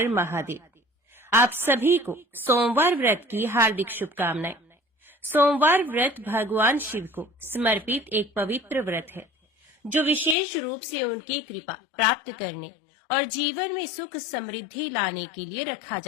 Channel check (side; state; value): right; drops out; at 10.4 s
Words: महादेव। आप सभी को सोमवार व्रत की हार्दिक शुभकामनाएं। सोमवार व्रत भगवान शिव को समर्पित एक पवित्र व्रत है जो विशेष रूप से उनकी कृपा प्राप्त करने और जीवन में सुख समृद्धि लाने के लिए रखा